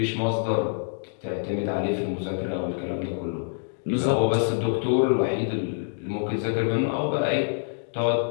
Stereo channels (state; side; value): silent; right; digital silence